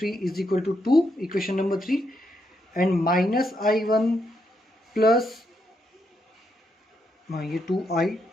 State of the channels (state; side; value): normal; both; correlation 0.79